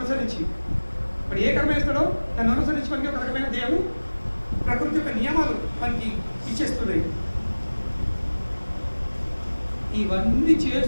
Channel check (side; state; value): both; inverted; correlation -1.00